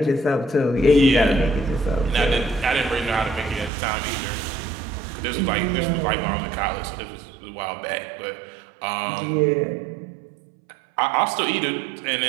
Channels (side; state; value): left; drops out; at 3.7 s